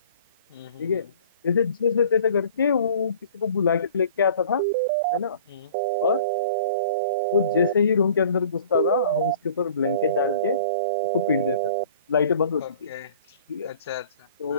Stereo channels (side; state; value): both; inverted; correlation -0.48